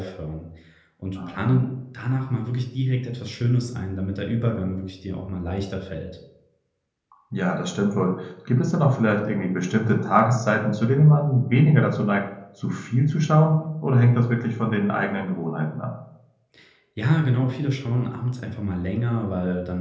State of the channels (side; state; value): both; identical; correlation 1.00